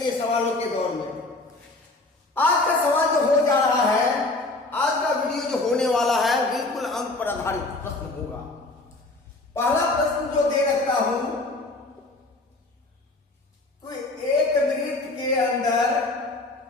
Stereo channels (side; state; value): right; quieter; 3.0 dB